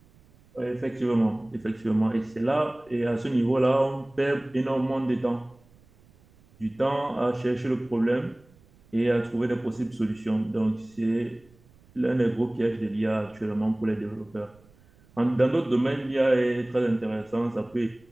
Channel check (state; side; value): noise; right; rumble, 29 dB below the sound